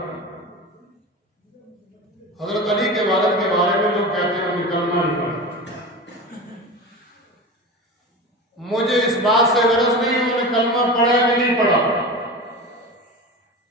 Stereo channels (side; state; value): both; normal; correlation 0.28